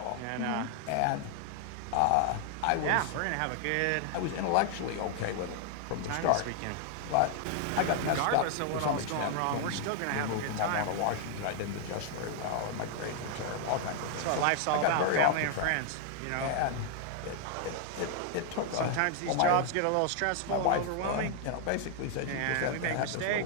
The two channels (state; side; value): different; both; correlation 0.00